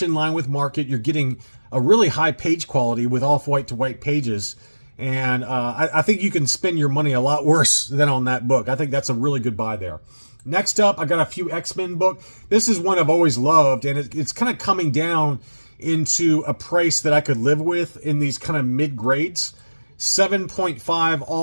in line with market. You're getting a really high page quality with off-white to white pages, and I think you can spend your money a lot worse than on that book. I think that's a really good buy there. Next up, I got a few X-Men book. This is one I've always loved, and it's kind of coming down into a price that I could live with in these kind of mid-grades. 7.5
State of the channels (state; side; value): inverted; both; correlation -1.00